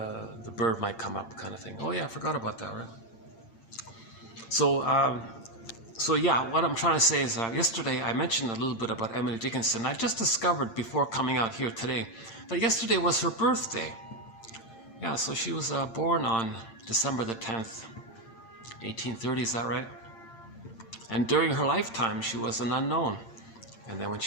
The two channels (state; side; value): late; right; 8.8 ms